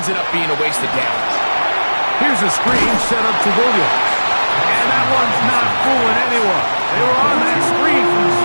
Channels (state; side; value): inverted; both; correlation -1.00